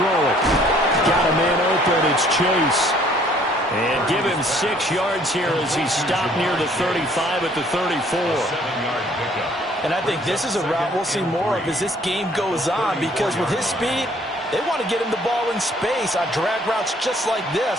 it. Got a man open. It's Chase. And give him 6 yards here as he stopped near the 35 at the 34. And I think this is a route we'll see more of as this game goes on, because with his speed, they want to get him the ball in space on drag routes just like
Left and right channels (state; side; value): normal; both; correlation 0.60